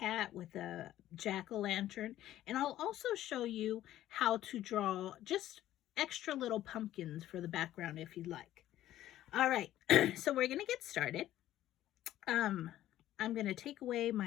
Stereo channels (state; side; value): quieter; right; 13.4 dB